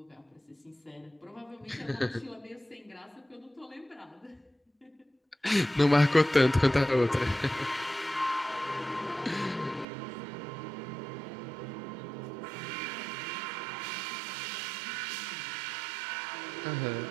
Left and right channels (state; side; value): drops out; left; at 9.9 s